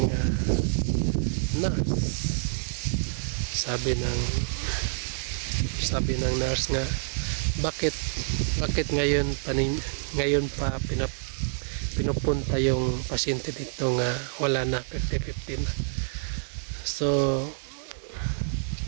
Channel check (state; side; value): silent; left; digital silence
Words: nurse. Sabi ng nurse nga, bakit ngayon pa pinupunta yung pasyente dito nga wala na 50-50 na.